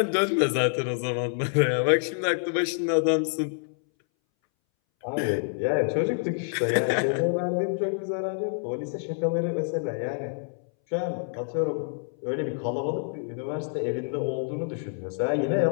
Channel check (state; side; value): silent; right; 60 dB below the other